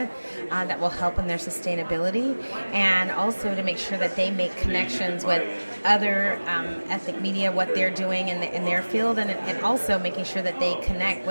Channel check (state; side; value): inverted; both; correlation -1.00